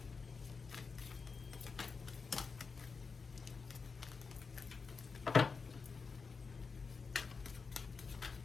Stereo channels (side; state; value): right; quieter; 4.9 dB